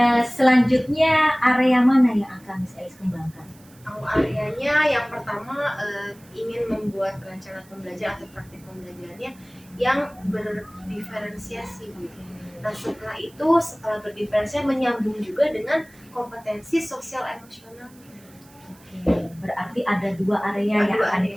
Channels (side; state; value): right; noise; hiss, 27 dB below the sound